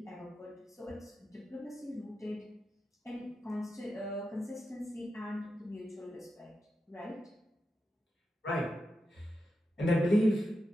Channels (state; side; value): normal; both; correlation 0.89